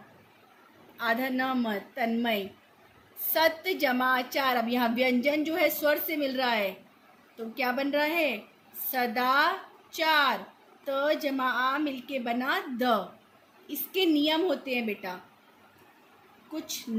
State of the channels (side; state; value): both; identical; correlation 1.00